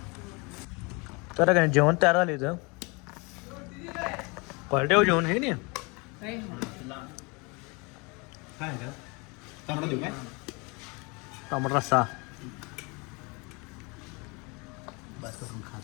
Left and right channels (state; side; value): quieter; right; 28.8 dB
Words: तर काय जेवण तयार झालं इथं. क्वालिटी हो जेवण हे नाही. काय तांबडा देऊ काय? तांबडा रस्सा. बस करून